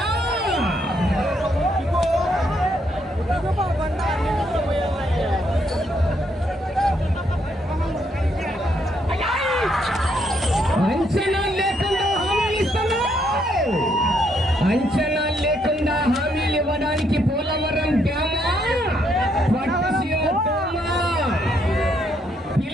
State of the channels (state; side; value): normal; both; correlation 0.73